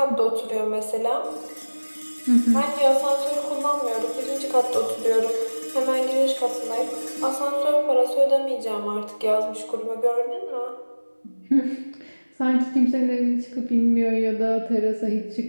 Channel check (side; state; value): both; inverted; correlation -1.00